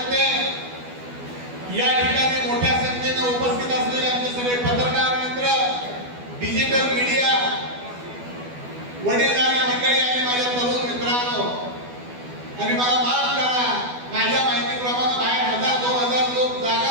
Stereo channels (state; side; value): late; left; 12 ms